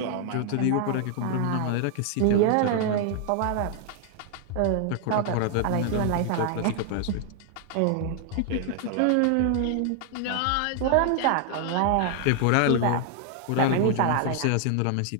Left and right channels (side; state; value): both; different; correlation 0.00